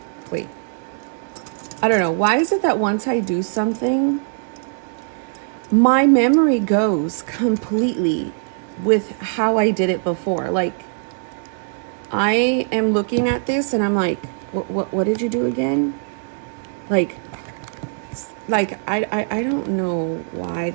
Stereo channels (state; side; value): silent; left; digital silence